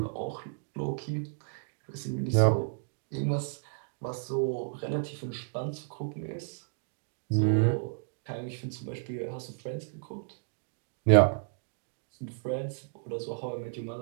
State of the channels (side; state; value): left; silent; digital silence